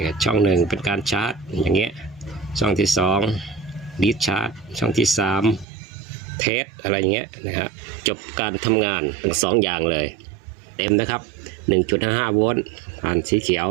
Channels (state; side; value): drops out; left; at 5.7 s